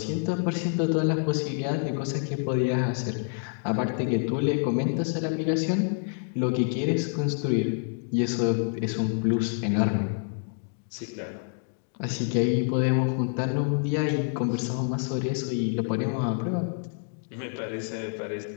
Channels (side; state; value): right; silent; 60 dB below the other